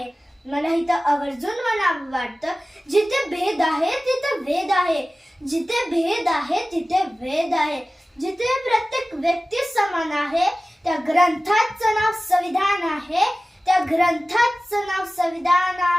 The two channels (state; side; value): normal; both; correlation 0.96